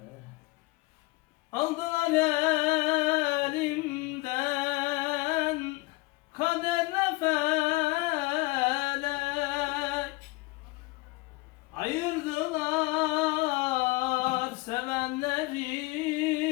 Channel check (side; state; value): right; quieter; 23.0 dB